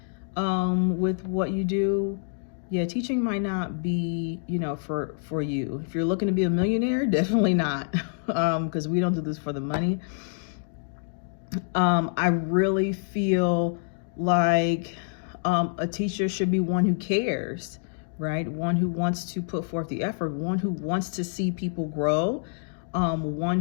with what you do, yeah, teaching might not be, for you. If you're looking to be a millionaire, definitely not, because we don't do this for the money. I really feel like a teacher should be one who cares, right? One who wants to put forth the effort, one who wants to see people grow, one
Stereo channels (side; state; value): right; silent; digital silence